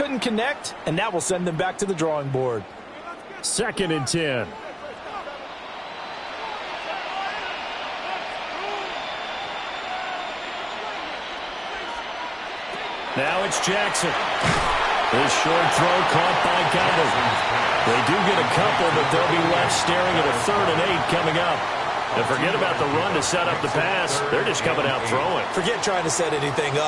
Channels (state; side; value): identical; both; correlation 1.00